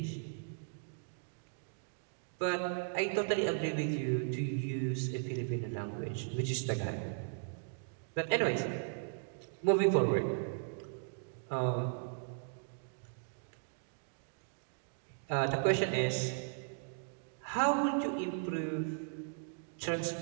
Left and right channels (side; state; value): left; silent; digital silence